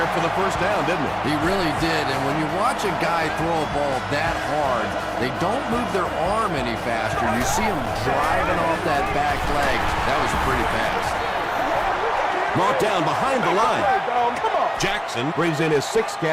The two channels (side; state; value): both; identical; correlation 1.00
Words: for the first down, didn't he? He really did. And when you watch a guy throw a ball that hard, they don't move their arm any faster. You see him driving off that back leg. That was a pretty pass. Brought down behind the line. Jackson brings in his 6th